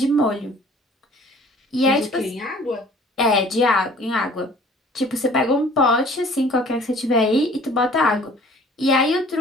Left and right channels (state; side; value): normal; both; correlation 0.51